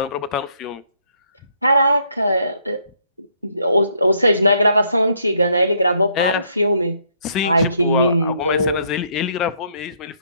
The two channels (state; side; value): inverted; both; correlation -0.69